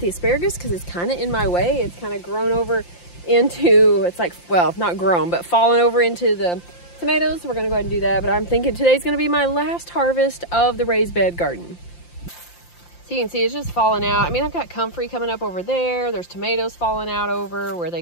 asparagus because it's kind of in my way. It's kind of grown over into, it's like, well, not grown, but fallen over into the tomatoes. So we're gonna go ahead and do that. But I'm thinking today's gonna be my last harvest of the raised bed garden. So you can see it's just falling out. I mean, I've got comfrey coming up over there. There's tomatoes falling out over where they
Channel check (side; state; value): right; late; 5.8 ms